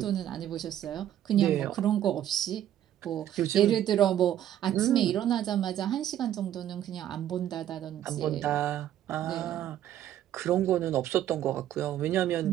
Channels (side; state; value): left; quieter; 11.6 dB